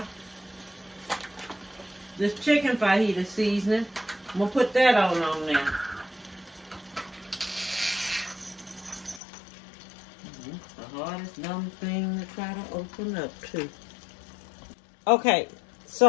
This chicken fajita seasoning. I'm going to put that on there. It's the hardest dumb thing to try to open up too. Okay,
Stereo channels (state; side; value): drops out; right; at 9.2 s